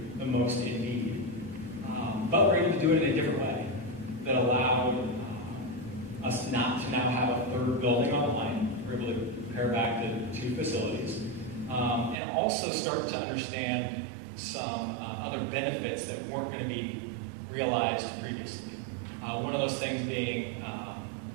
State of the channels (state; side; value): drops out; left; at 12.2 s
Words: the most in need. But we're able to do it in a different way that allowed us not to now have a 3rd building on the line. We're able to compare back the 2 facilities and also start to understand some other benefits that weren't going to be realized previously. One of those things being